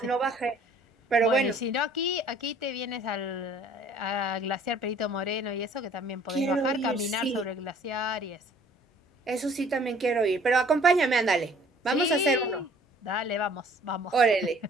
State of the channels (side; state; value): both; normal; correlation 0.55